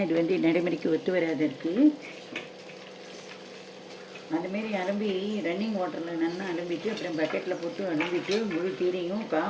இது வந்து நடைமுறைக்கு ஒத்து வராது இருக்குது. அதுமாரி அலம்பி ரன்னிங் வாட்டரில் நல்லா அலம்பிட்டு அப்புறம் பக்கெட்டில் போட்டு அலம்பிட்டு முழு கீரையும்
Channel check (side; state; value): both; identical; correlation 1.00